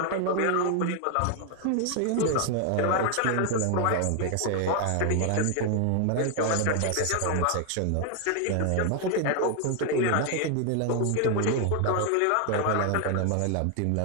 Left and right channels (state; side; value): different; both; correlation 0.00